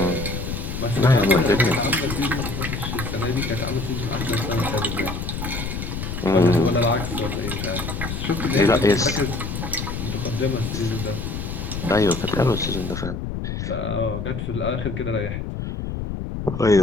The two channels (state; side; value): noise; left; rumble, 5 dB below the sound